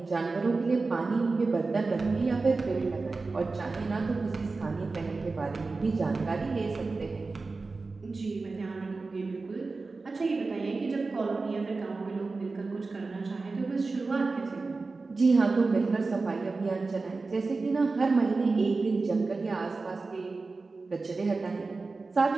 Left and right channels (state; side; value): quieter; left; 3.9 dB